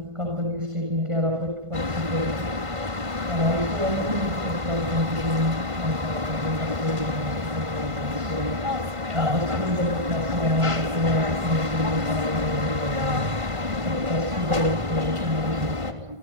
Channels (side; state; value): left; late; 1.5 ms